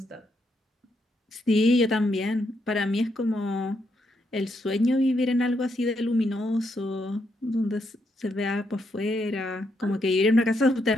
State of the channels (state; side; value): normal; both; correlation 0.78